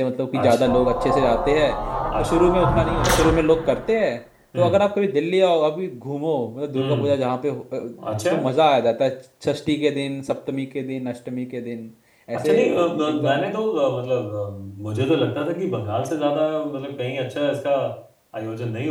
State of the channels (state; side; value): identical; both; correlation 1.00